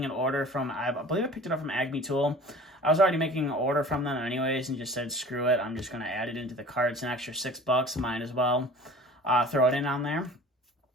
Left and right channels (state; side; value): normal; both; correlation 0.43